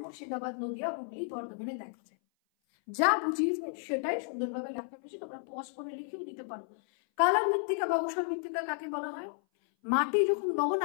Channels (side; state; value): right; silent; 56 dB below the other